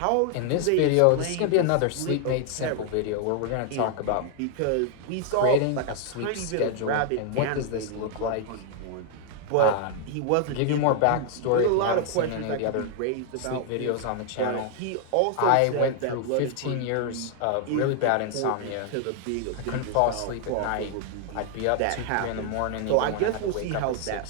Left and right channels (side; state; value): both; different; correlation 0.00